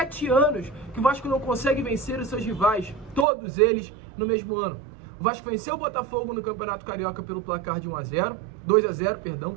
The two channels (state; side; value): drops out; left; at 3.2 s